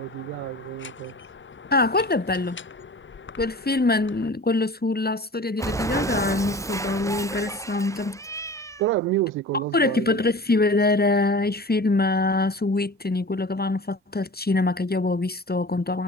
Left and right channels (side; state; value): both; normal; correlation 0.39